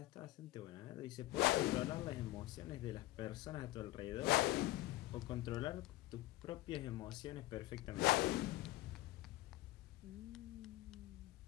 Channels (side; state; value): right; quieter; 17.6 dB